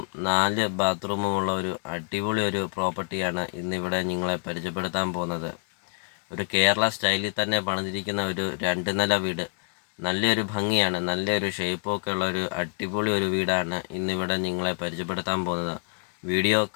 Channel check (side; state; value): right; quieter; 37.9 dB